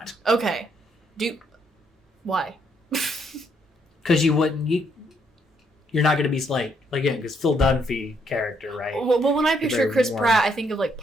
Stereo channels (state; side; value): normal; both; correlation 0.72